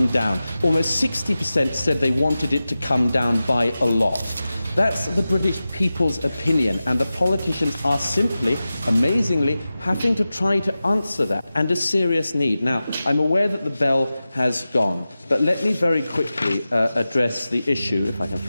down. Almost 60% said they wanted it to come down by a lot. That's the British people's opinion, and the politicians are simply, amazingly, having to try to answer that, and a serious need. Now, I'm aware that the bell has gone, but let me very quickly address the issue, if I can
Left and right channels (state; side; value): inverted; both; correlation -0.94